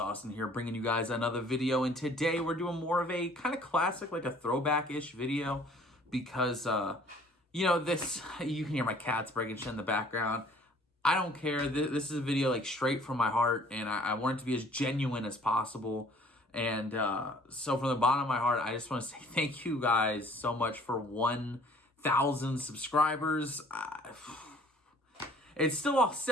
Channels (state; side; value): normal; both; correlation 0.55